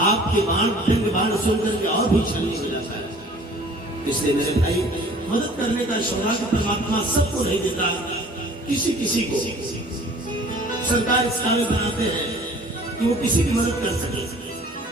आपके बाण सुनकर के और भी छलनी हो जाता है। इसलिए मेरे भाई, मदद करने का सौभाग्य परमात्मा सबको नहीं देता, किसी किसी को सरकार इस काबिल बनाते हैं कि वो किसी की मदद कर सके।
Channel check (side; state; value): both; normal; correlation 0.50